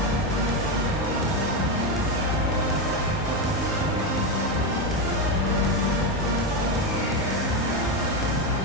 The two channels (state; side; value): normal; both; correlation 0.11